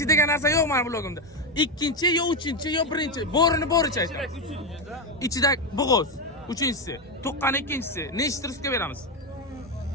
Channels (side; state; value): both; normal; correlation 0.10